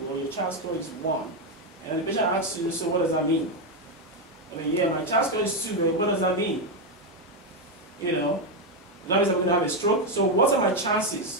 or your CHAR score is 1, and the patient asks you, so what does that mean? I mean, yeah, my CHAR score is 2, but what does that mean? You know, that means I'm going to have a stroke. So what are my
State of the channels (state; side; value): normal; both; correlation 0.05